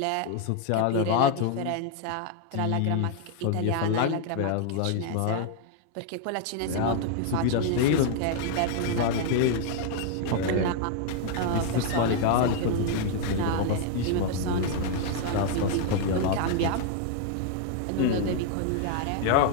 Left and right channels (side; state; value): both; different; correlation 0.00